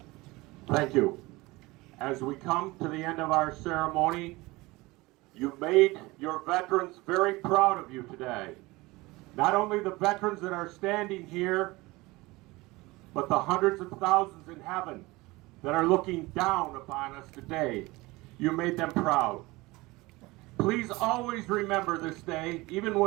Thank you. As we come to the end of our ceremony, you've made your veterans very proud of you today. Not only the veterans that are standing here, but the hundreds of thousands in heaven that are looking down upon us today. You made them proud. Please always remember this day, even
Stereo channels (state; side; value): quieter; left; 21.7 dB